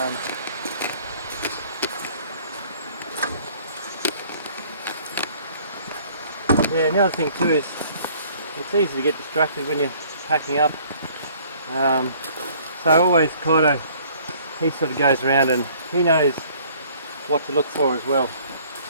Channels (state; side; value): inverted; both; correlation -0.56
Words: Yeah, and the other thing too is it's easy to get distracted when you're packing up. So always Kaito, he sort of goes around and he knows what to look for as well.